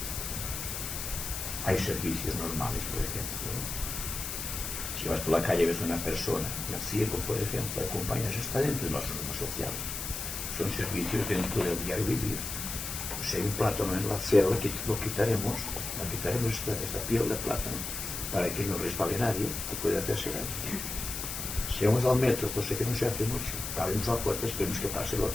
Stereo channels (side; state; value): left; noise; hiss, 5 dB below the sound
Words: Hay servicios normales, por ejemplo. Si vas por la calle y ves a una persona, un ciego, por ejemplo, acompañas, está dentro de las normas sociales. Son servicios dentro del diario vivir. Si hay un plátano en la acera, lo quitaremos esta piel de plátano para que no resbale nadie, que puede hacerse daño. Si vamos al metro, cosa que no se hace mucho, abrimos la puerta, esperemos que pase el